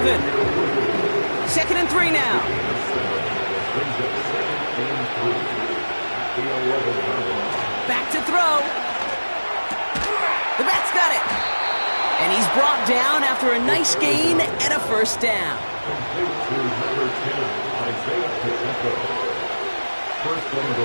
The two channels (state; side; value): inverted; both; correlation -1.00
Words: 2nd and 3 now. Back to throw. The bat's got it. And he's brought down after a nice gain and a first down.